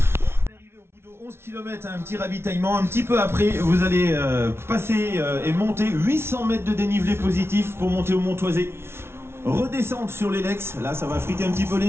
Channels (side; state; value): left; late; 0.12 ms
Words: Arrivé au bout de 11 km, un petit ravitaillement. Un petit peu après, vous allez passer et monter 800 mètres de dénivelé positif pour monter au Montoisé. Redescendre sur l'Elex, là ça va friter un petit peu